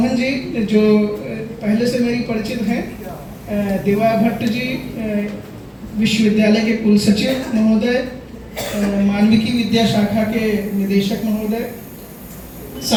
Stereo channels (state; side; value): identical; both; correlation 1.00